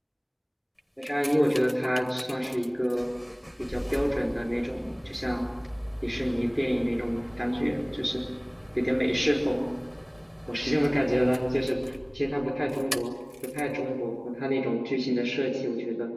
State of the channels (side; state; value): both; identical; correlation 1.00